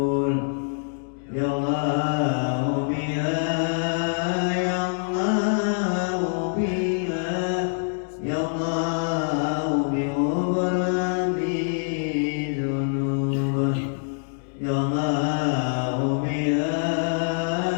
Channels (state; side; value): silent; right; digital silence